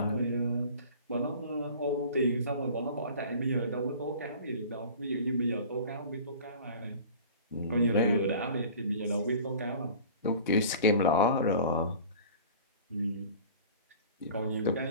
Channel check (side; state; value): both; inverted; correlation -0.43